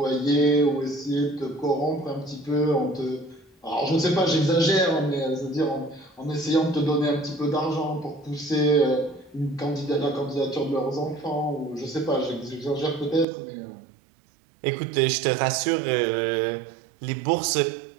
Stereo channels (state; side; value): drops out; left; at 13.2 s